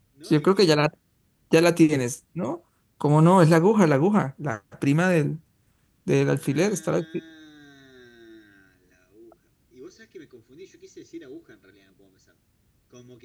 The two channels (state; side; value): identical; both; correlation 1.00